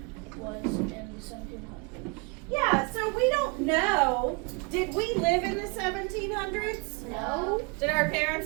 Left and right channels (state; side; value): quieter; left; 31.9 dB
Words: was in the 1700s. Yeah, so we don't know. Did we live in the 1700s? No. Did our